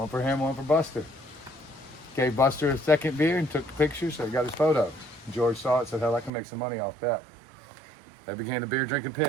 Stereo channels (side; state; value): left; drops out; at 6.3 s